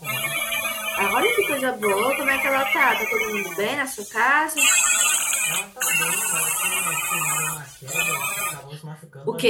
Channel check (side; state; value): both; identical; correlation 1.00